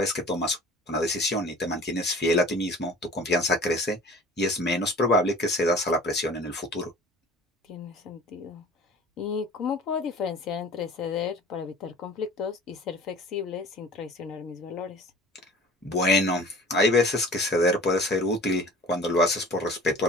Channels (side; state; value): both; normal; correlation 0.44